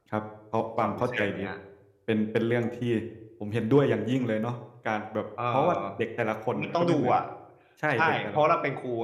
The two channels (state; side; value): identical; both; correlation 1.00